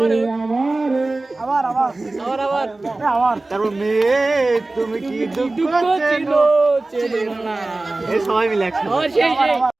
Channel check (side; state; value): left; quieter; 3.1 dB